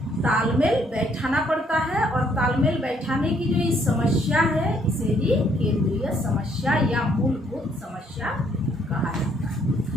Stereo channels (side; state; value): both; normal; correlation 0.68